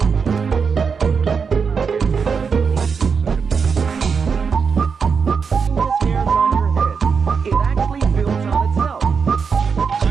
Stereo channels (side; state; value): left; quieter; 5.8 dB